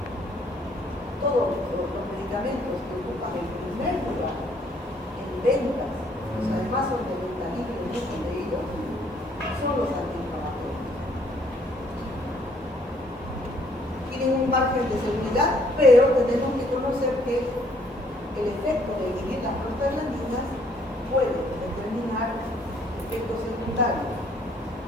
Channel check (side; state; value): both; normal; correlation 0.64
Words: Todos los medicamentos que ocupan el primer lugar en ventas, pues además son de venta libre, muchos de ellos, son los antiinflamatorios. Tienen un margen de seguridad, pero tenemos que conocer que el efecto de inhibir las prostaglandinas puede determinar efectos secundarios.